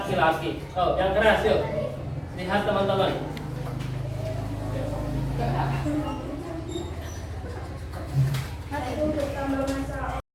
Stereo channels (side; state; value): both; identical; correlation 1.00